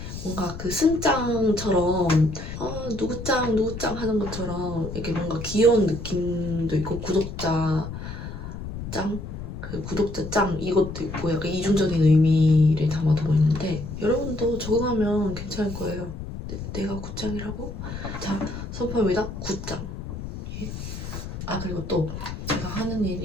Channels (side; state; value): left; noise; rumble, 8 dB below the sound